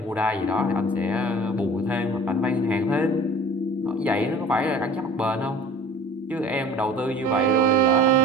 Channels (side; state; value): both; normal; correlation 0.44